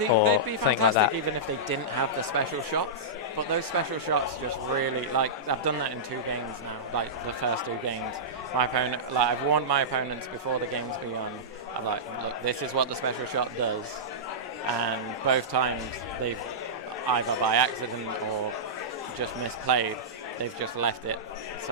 or they'd be something fantastic like that. even if they didn't have the special shots. But those special shots just really, like, I've done that in 2 games now, like the first 2 games. My opponent, like, I've warned my opponents before the game's begun. I'm like, look, this is what the special shot does. And both times they've either by accident or just misplayed, they've just left it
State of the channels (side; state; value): both; normal; correlation -0.15